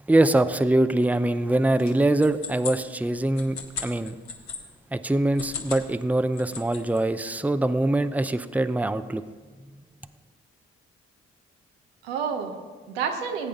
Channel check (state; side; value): normal; both; correlation 0.87